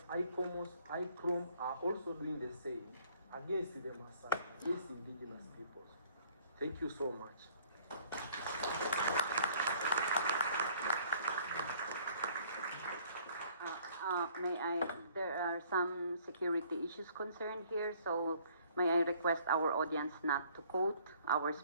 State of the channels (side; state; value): both; inverted; correlation -0.59